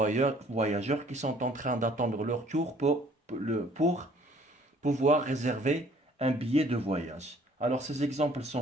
qui sont en train d'attendre leur tour pour pouvoir réserver un billet de voyage. Alors, ces exemples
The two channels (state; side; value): normal; both; correlation 0.57